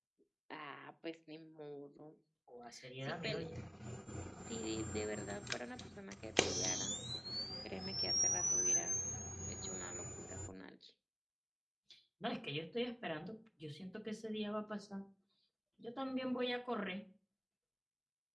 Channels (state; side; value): identical; both; correlation 1.00